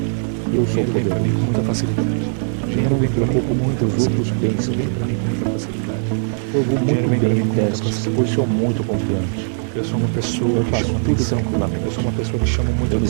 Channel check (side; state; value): left; silent; 66 dB below the other